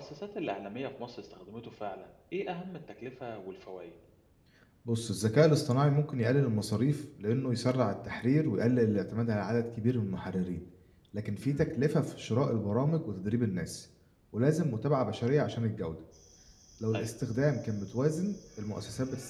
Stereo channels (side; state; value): both; identical; correlation 1.00